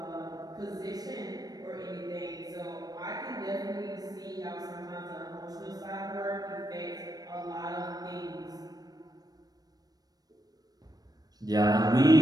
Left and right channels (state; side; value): late; left; 0.19 ms